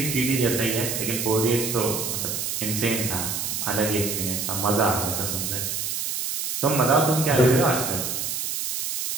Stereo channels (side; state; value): right; noise; hiss, 2 dB below the sound